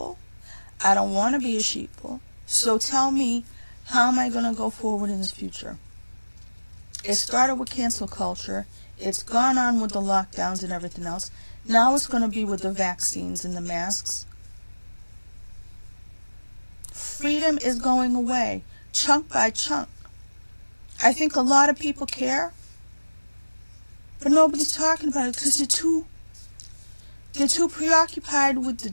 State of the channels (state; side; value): inverted; both; correlation -1.00